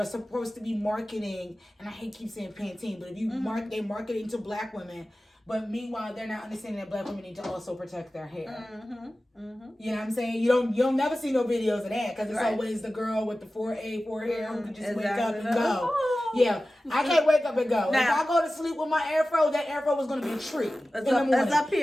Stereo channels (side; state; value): both; normal; correlation 0.95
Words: supposed to be marketing, and I hate keep saying Pantene, but if you they're marketing to black women, but meanwhile they're not understanding that black women need to also protect their hair. You know what I'm saying? You'll never see no videos of that because it's always the girl with the 4A hair who can just wake up and go. Yeah, I can't wake up and go. Now, if I go to sleep with my afro, that afro is going to be a tree in the morning. It's up